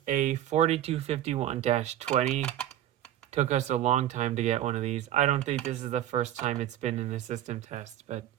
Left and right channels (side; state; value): left; quieter; 12.3 dB